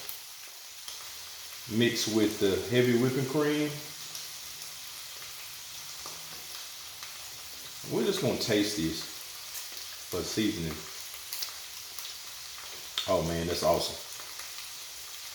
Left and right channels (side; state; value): both; identical; correlation 1.00